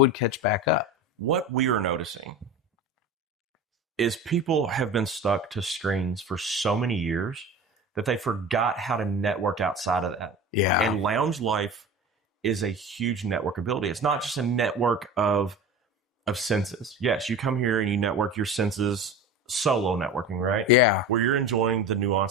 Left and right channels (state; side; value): normal; both; correlation 0.32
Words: catch back up. What we are noticing is people have been stuck to screens for so many years that they forgot how to network outside of that. Yeah. And lounge life is a huge network ability. It's not just a network of senses. Yes, you come here and you network your senses, solo networking, right? Yeah. Where you're enjoying the